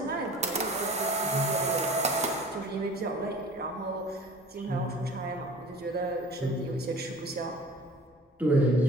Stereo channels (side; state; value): both; normal; correlation 0.44